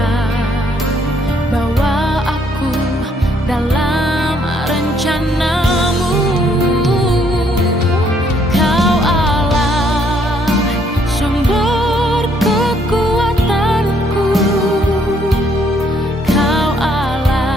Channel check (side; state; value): both; normal; correlation 0.68